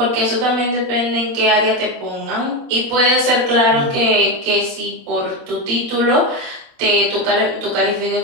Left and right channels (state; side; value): late; left; 28 ms